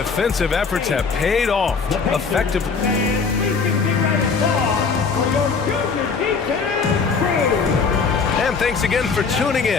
efforts have paid off effectively. And thanks again for tuning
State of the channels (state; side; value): quieter; right; 5.2 dB